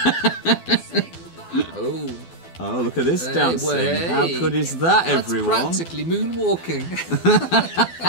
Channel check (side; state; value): right; late; 12 ms